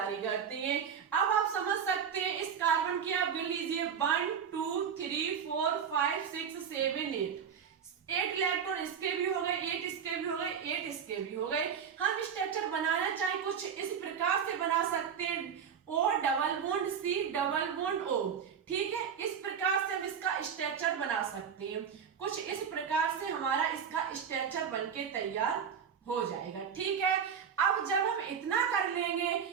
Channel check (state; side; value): quieter; left; 7.4 dB